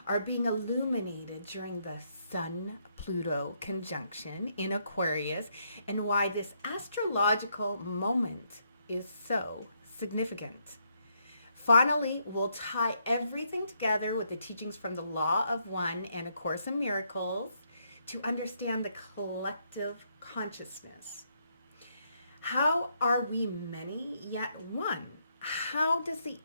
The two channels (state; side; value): inverted; both; correlation -0.75